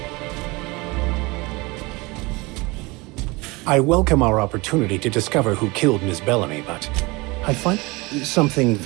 I welcome our opportunity to discover who killed Miss Bellamy, but I find something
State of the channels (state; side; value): quieter; left; 24.4 dB